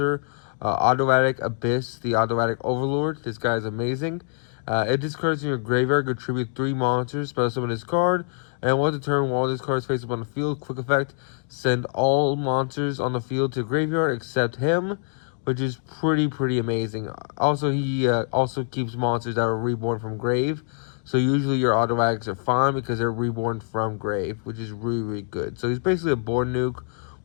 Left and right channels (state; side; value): silent; right; 62 dB below the other